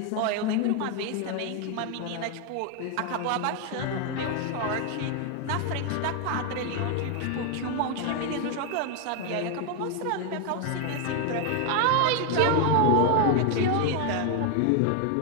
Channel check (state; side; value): different; both; correlation 0.01